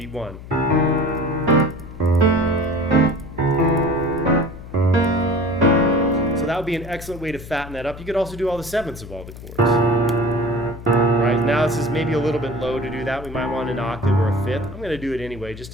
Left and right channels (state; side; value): noise; left; hum, 14 dB below the sound